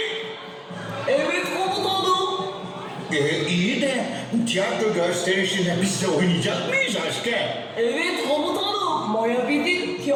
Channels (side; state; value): both; identical; correlation 1.00